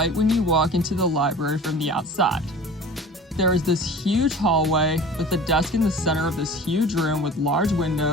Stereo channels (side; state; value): both; normal; correlation 0.40